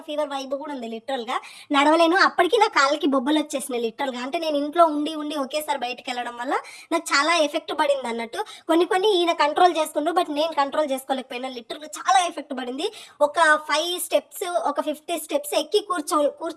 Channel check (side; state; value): both; identical; correlation 1.00